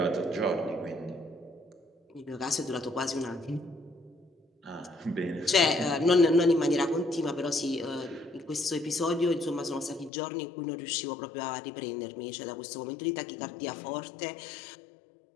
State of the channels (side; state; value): right; drops out; at 10.1 s